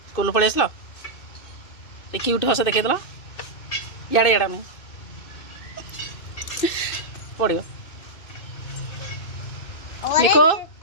स्कूल पलि आसल क्यूट हस देखेदेल इे इड़ा मुझे पड़ो मिको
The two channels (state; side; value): late; right; 2.6 ms